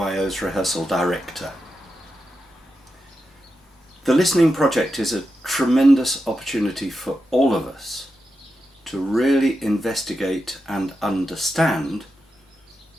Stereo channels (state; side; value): normal; both; correlation 0.88